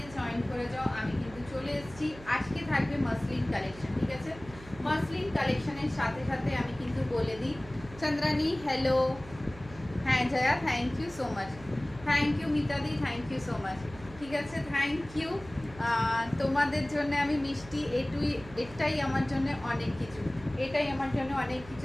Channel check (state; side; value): noise; right; hum, 18 dB below the sound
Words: জয়েন করে যাও। আমি কিন্তু চলে এসেছি। আজকে থাকবে মাসলিন কালেকশন, ঠিক আছে? মাসলিন কালেকশনের সাথে সাথে আমি কিন্তু বলে দিই, চন্দ্রানী হ্যালো, হ্যাঁ Joya thank you so much, thank you মিতাদি, থ্যাংক ইউ সো মাচ, ঠিক আছে থ্যাংক ইউ। তোমাদের জন্য আমি মিষ্টি, এটাই আমার জন্য অনেক কিছু, এটাই আমার জন্য অনেক কিছু,